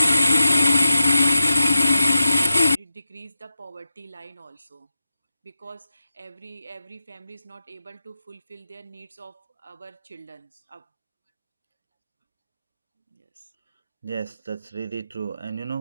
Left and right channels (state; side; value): inverted; both; correlation -0.93